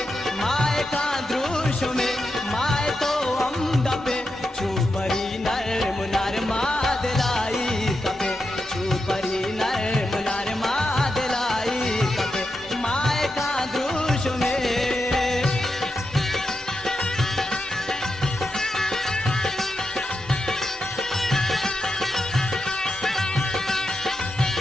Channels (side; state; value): both; normal; correlation 0.88